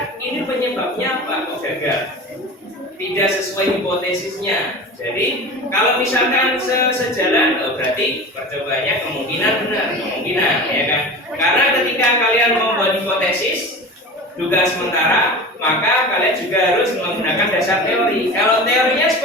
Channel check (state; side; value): normal; both; correlation 0.33